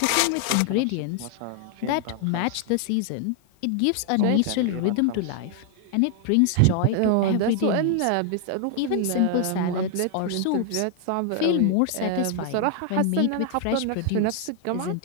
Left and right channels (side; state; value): both; different; correlation 0.00